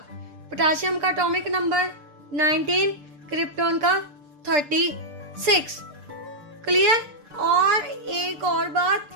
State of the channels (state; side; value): late; left; 6.7 ms